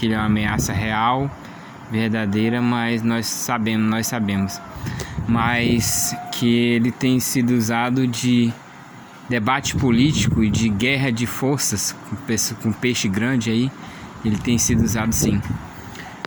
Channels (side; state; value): both; identical; correlation 1.00